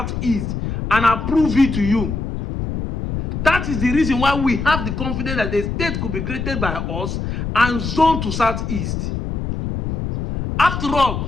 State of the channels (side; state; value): left; noise; rumble, 4 dB below the sound